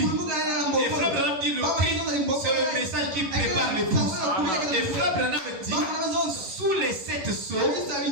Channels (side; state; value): left; late; 11 ms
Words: Et Frère Branham dit le cri, c'est le message qui prépare l'épouse. Et Frère Branham dit, sous les 7 sceaux,